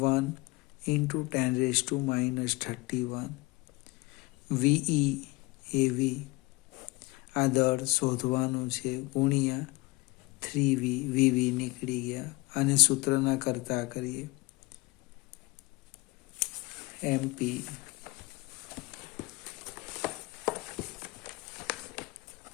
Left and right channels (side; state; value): right; quieter; 23.5 dB